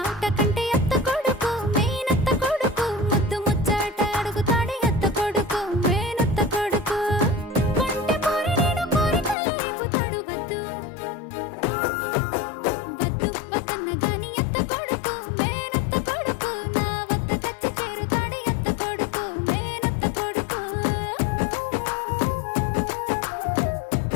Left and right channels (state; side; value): drops out; right; at 9.3 s